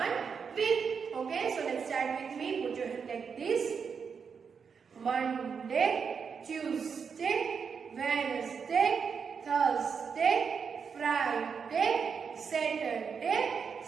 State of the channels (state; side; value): quieter; left; 6.2 dB